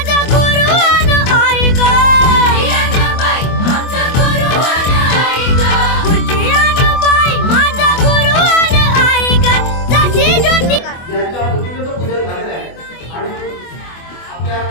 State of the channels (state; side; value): late; right; 24 ms